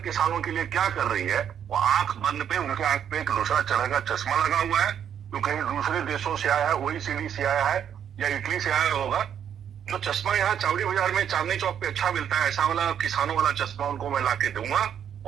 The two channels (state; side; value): quieter; left; 8.9 dB